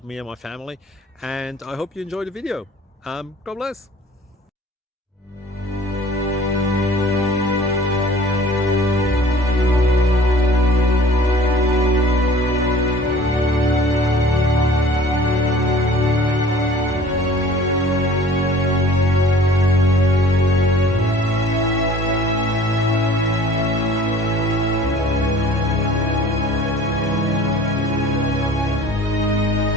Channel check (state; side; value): normal; both; correlation 0.48